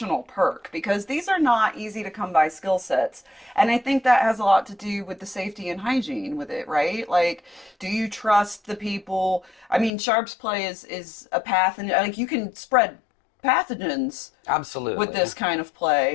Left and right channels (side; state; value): right; drops out; at 9.9 s